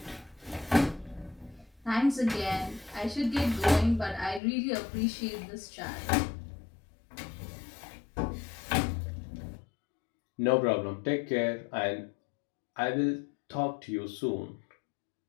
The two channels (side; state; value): right; drops out; at 4.4 s